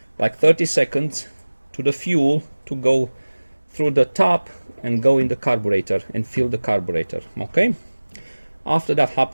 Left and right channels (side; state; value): both; inverted; correlation -1.00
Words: like 30 seconds to the fuel to go through the tap and go in the carburetor and fill the carburetor. Okay. After that